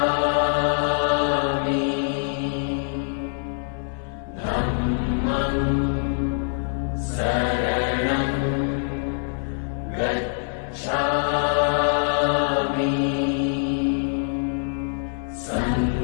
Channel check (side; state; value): right; silent; 56 dB below the other